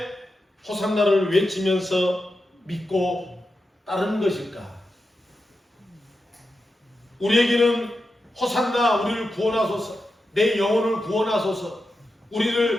호산나를 외치면서 믿고 따르는 것일까? 우리에게는 호산나, 우리를 구원하소서, 내 영혼을 구원하소서,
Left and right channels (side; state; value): both; normal; correlation 0.89